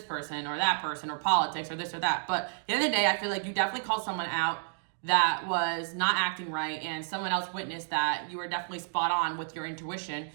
person or that person or politics or this or that. But at the end of the day, I feel like you definitely called someone out that was not acting right, and someone else witnessed that you were definitely spot on with your intuition.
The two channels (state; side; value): silent; left; digital silence